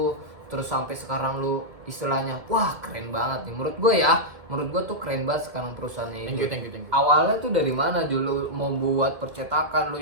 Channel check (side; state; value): left; late; 2.1 ms